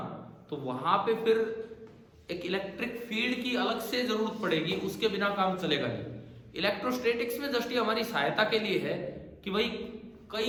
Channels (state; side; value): identical; both; correlation 1.00